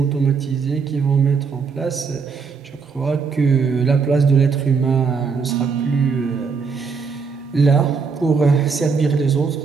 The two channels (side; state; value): left; quieter; 5.3 dB